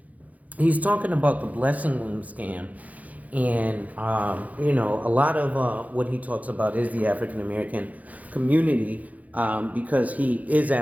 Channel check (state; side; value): late; left; 0.075 ms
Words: he's talking about the blessing loom scam, and a lot of what he talks about is the African American community, because he is